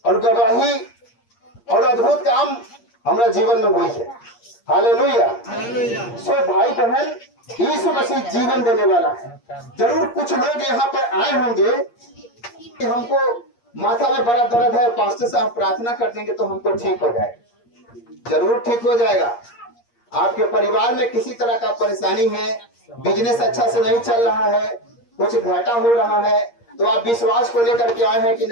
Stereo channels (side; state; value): right; late; 8.5 ms